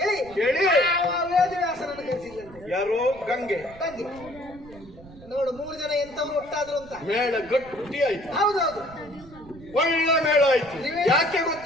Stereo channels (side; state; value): right; noise; rumble, 20 dB below the sound